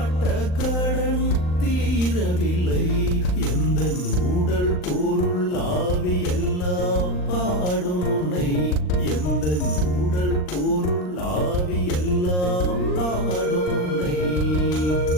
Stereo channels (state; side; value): late; right; 39 ms